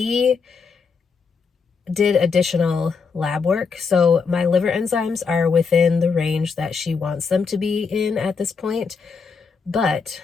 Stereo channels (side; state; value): right; quieter; 5.3 dB